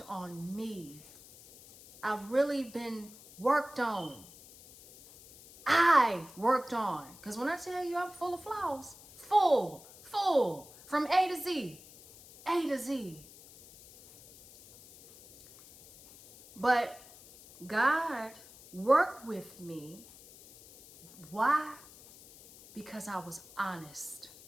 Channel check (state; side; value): noise; left; hiss, 20 dB below the sound